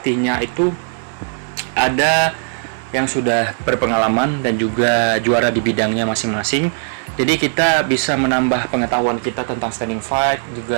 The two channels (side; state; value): left; silent; digital silence